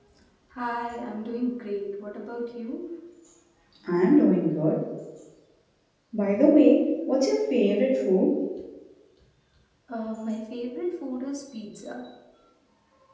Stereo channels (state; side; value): identical; both; correlation 1.00